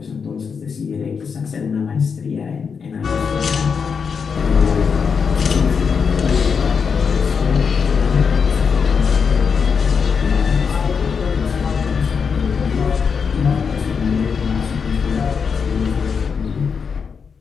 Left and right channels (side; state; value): right; quieter; 6.0 dB